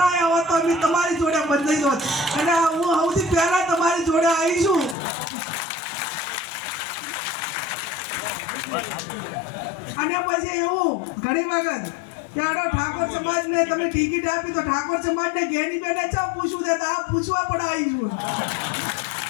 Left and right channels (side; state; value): right; drops out; at 5.0 s